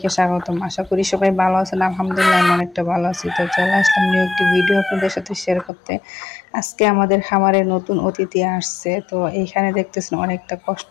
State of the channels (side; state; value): right; drops out; at 5.7 s